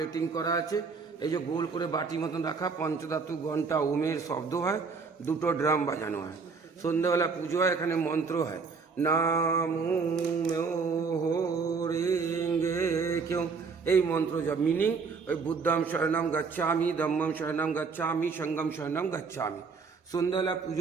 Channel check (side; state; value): left; quieter; 4.9 dB